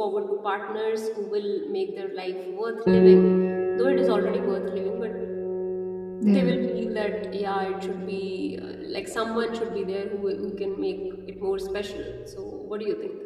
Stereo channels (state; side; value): identical; both; correlation 1.00